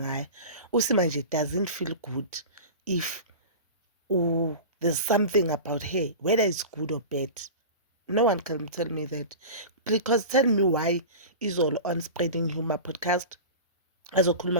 Usima nje doesn't feel good if there's something about her, whether it's good or bad. No one can tell me that. Because tell me why is all on Spreading Humor podcast as a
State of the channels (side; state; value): both; inverted; correlation -0.31